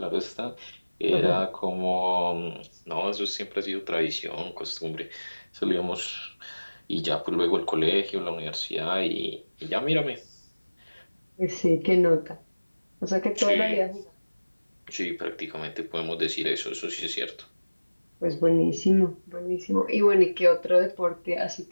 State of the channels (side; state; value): both; inverted; correlation -1.00